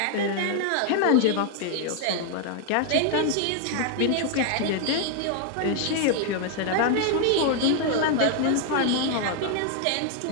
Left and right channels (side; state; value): both; different; correlation 0.00